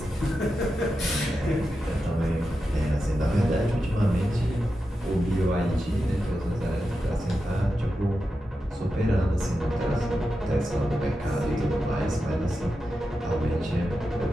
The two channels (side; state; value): both; normal; correlation 0.90